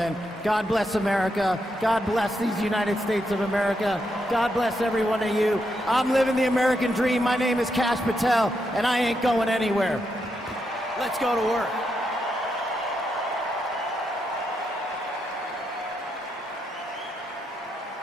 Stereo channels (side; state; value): both; normal; correlation 0.82